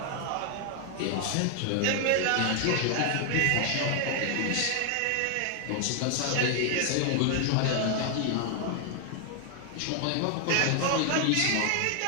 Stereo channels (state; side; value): different; both; correlation 0.00